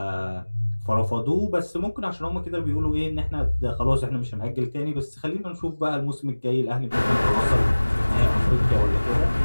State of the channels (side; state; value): both; inverted; correlation -1.00